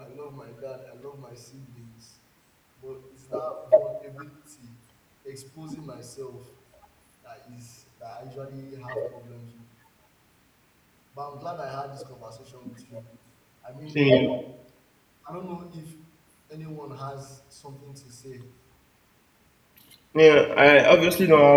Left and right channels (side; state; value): both; identical; correlation 1.00